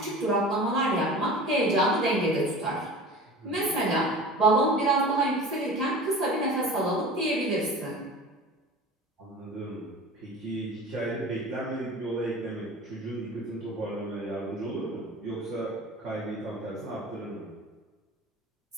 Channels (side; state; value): both; normal; correlation 0.37